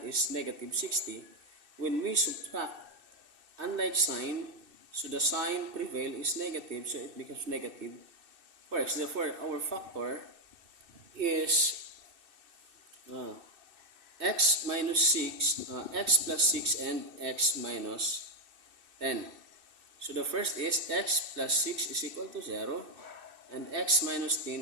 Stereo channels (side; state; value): left; late; 2.6 ms